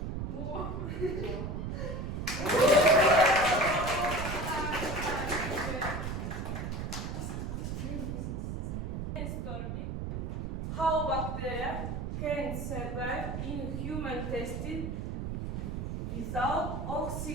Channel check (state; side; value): noise; right; rumble, 4 dB below the sound